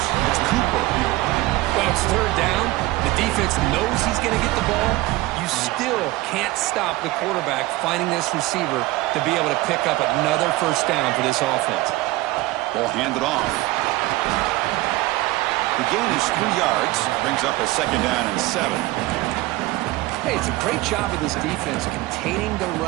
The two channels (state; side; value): quieter; left; 19.0 dB